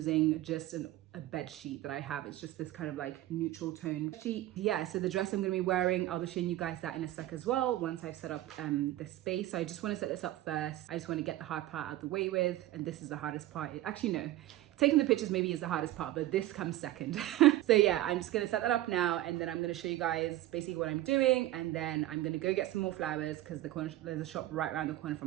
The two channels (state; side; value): quieter; left; 15.2 dB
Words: just a bed sheet that I have. It's just this kind of like neutral tone sheet. Yeah, so the dress I'm going to be wearing, I'll be showing you guys that in a sec as well once I've set up the space. So I just want to set this up first. I just want to get the hard part out of the way with, and this is the hardest part. Actually, no. Taking the pictures maybe is the hardest part, but this comes second. So yeah, I'm just gonna set that up now, and then I'm gonna show you guys basically what I'm doing, and then I'm gonna go get some more flowers because there's a shop right around the corner